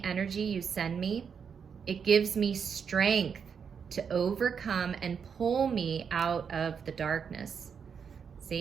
energy you send me, it gives me strength to overcome and pull me out of the darkness.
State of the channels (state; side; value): quieter; left; 6.7 dB